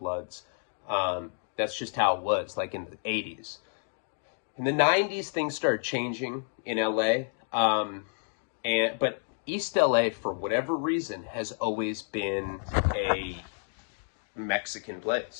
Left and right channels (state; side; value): silent; right; 58 dB below the other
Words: That's just how it was, like in the 80s. In the 90s, things started changing in LA. But East LA, for whatever reason, has always been a Mexican